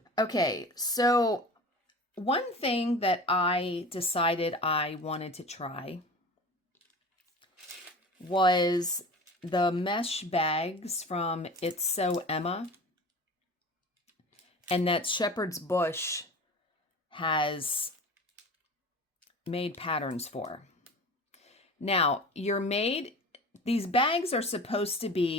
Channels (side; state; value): both; normal; correlation 0.36